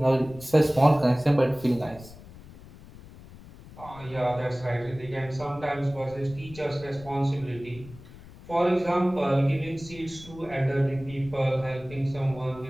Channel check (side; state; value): left; noise; rumble, 18 dB below the sound